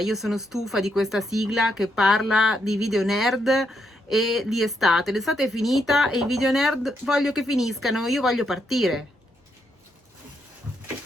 sono stufa di questa sigla che parla di video nerd e di estate. L'estate è finita e i video nerd voglio che finiscano, io voglio partire.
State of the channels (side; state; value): both; normal; correlation 0.78